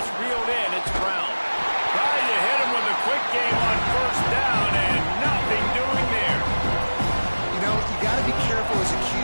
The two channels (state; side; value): inverted; both; correlation -1.00